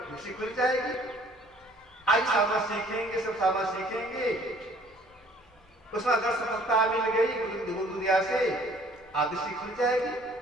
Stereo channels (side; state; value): both; normal; correlation 0.56